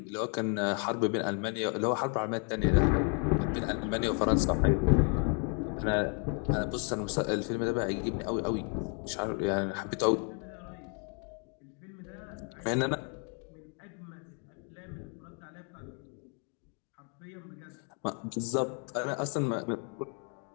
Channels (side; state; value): right; quieter; 39.3 dB